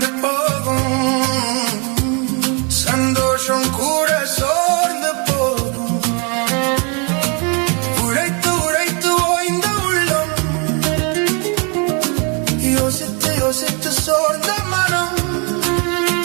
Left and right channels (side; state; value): left; quieter; 33.3 dB